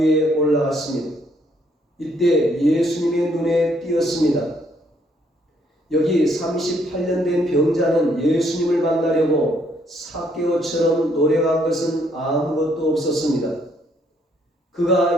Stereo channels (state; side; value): normal; both; correlation 0.69